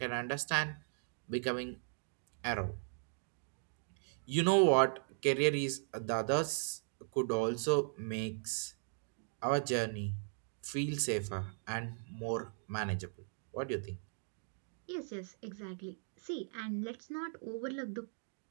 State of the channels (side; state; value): left; silent; digital silence